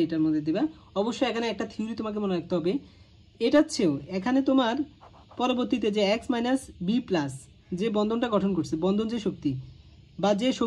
দিবা, অবশ্যই এখানে একটা থিওরি তোমাকে মনে রাখতে হবে, এটার চেয়েও এখানে তোমার পরবর্তীতে যে এক্স মাইনাস বি প্লাস যে বন্ধনটা গঠন করছে, বন্ধন যে শক্তি বা যে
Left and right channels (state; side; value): identical; both; correlation 1.00